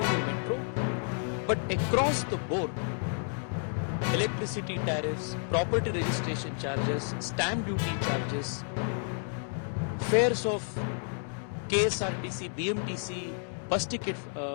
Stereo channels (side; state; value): right; silent; 57 dB below the other